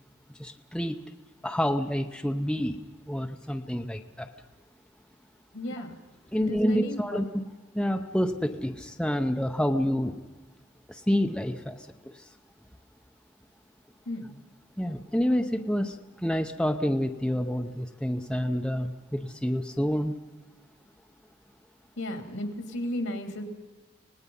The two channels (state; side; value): normal; both; correlation 0.93